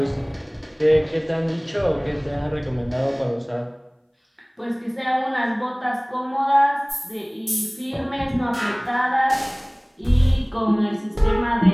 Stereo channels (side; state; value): both; identical; correlation 1.00